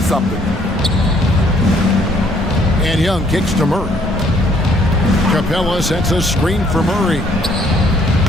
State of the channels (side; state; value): both; normal; correlation 0.64